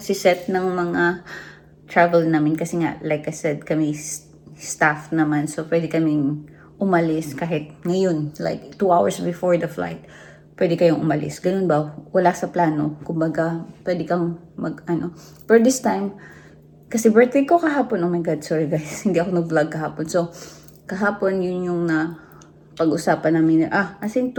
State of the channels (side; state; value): both; identical; correlation 1.00